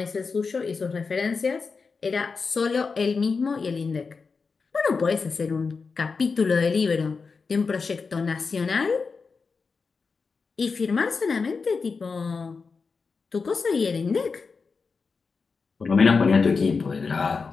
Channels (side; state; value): right; quieter; 4.8 dB